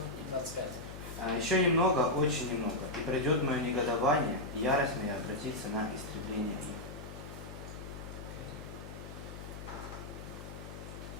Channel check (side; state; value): left; noise; hum, 10 dB below the sound